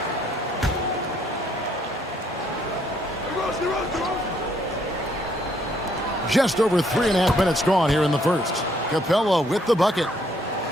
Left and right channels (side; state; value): both; normal; correlation 0.68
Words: Just over 3.5 minutes gone here in the first. Capella with the bucket.